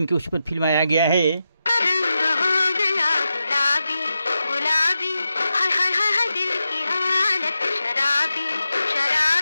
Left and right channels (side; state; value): both; inverted; correlation -0.89